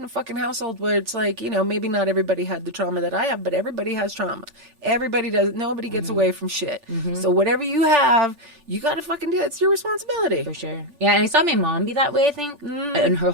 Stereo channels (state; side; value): late; left; 3.4 ms